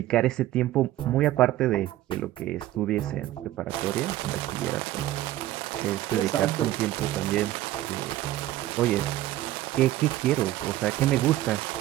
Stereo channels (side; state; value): left; quieter; 14.8 dB